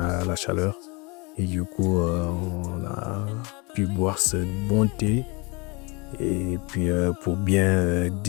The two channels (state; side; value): quieter; right; 28.9 dB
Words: chaleur. Et du coup, on a pu boire ce bon thé. Et puis pour bien